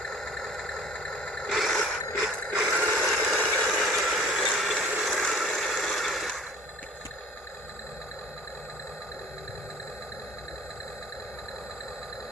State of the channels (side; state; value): both; normal; correlation 0.49